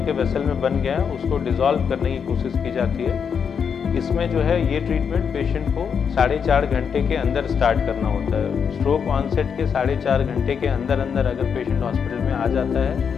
के वेसल में बन गया है उसको डिसॉल्व करने की कोशिश की जाती है। इसमें जो है ये ट्रीटमेंट पेशेंट को 4.5 घंटे के अंदर स्टार्ट करना होता है। स्ट्रोक ऑनसेट के 4.5 घंटे के अंदर अगर पेशेंट हॉस्पिटल में आ जाता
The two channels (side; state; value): right; quieter; 6.8 dB